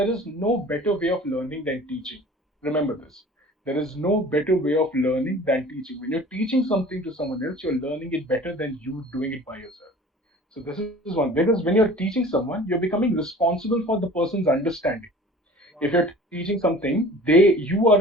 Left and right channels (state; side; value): normal; both; correlation 0.44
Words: is no better way of learning than teaching. Remember this. There is no better way of learning than teaching. When you're teaching something to someone else, you're learning it better than you doing it by yourself. So this is one, because when you're teaching someone, you're becoming responsible for the person's understanding. If you're teaching something, you are